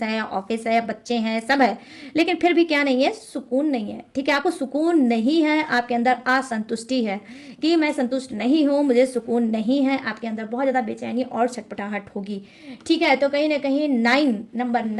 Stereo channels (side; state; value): both; identical; correlation 1.00